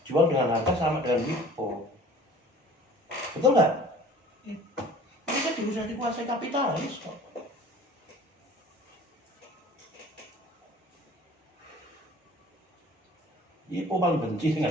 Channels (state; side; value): normal; both; correlation 0.47